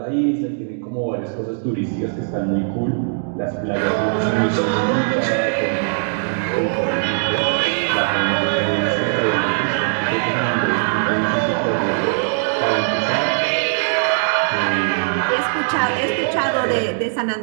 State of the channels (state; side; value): silent; left; digital silence